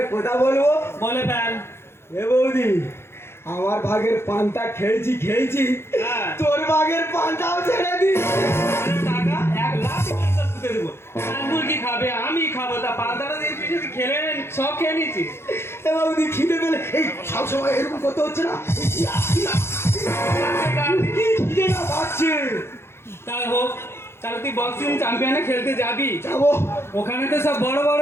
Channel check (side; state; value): right; late; 0.12 ms